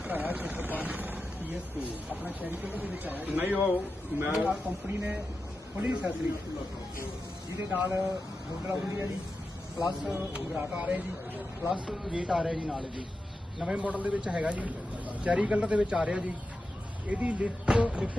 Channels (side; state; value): both; normal; correlation 0.90